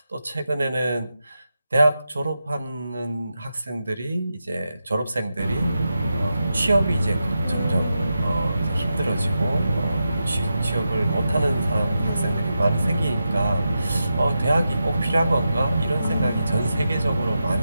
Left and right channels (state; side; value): inverted; both; correlation -0.89